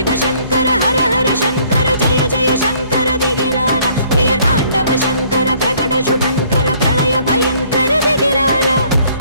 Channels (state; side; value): inverted; both; correlation -0.61